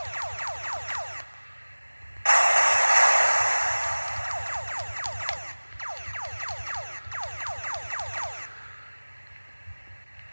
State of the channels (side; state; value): both; inverted; correlation -1.00